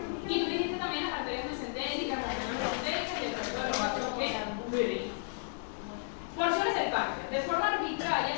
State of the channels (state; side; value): silent; right; digital silence